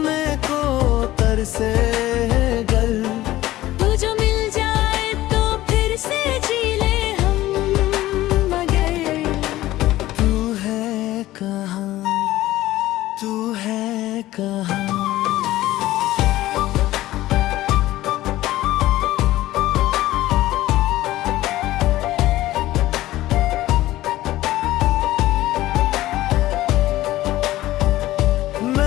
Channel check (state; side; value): quieter; right; 15.9 dB